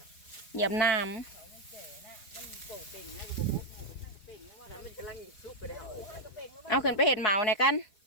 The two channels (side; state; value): right; late; 4.5 ms